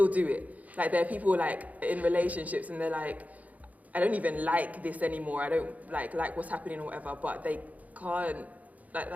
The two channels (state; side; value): late; left; 0.074 ms